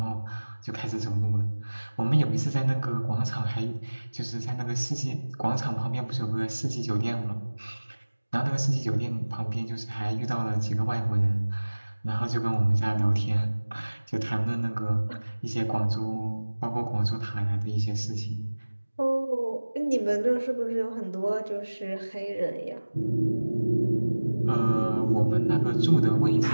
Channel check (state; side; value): inverted; both; correlation -1.00